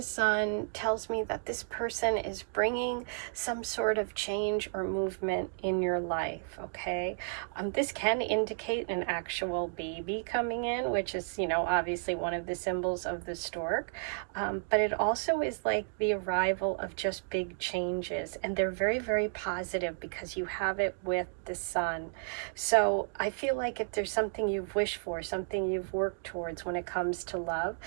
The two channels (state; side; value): silent; left; digital silence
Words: sun tells me that this person is bringing some sort of change or movement in your life, okay? This can indicate an actual baby coming in, which is, you know, obviously one of the symbols of the stork. But it also is like the arrival of just big changes. And they're very, very positive because you have it with the sun. So I feel like if there's something you've wished for, something you've worked towards when it comes to love,